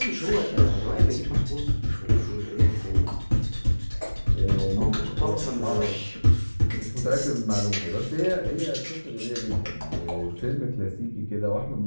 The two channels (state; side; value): inverted; both; correlation -1.00